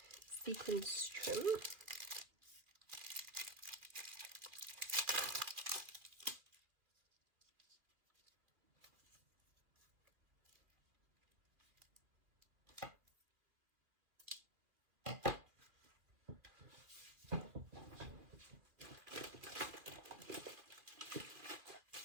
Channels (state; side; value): late; left; 2.4 ms